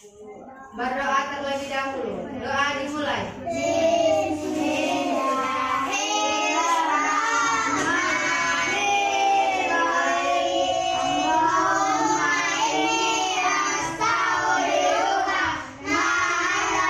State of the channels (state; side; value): identical; both; correlation 1.00